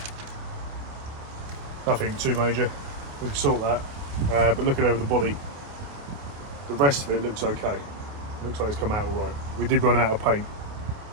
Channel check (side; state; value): left; late; 28 ms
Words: nothing too major. We can sort that. But looking over the body, the rest of it looks okay. Looks like it's come out all right. We did run out of paint,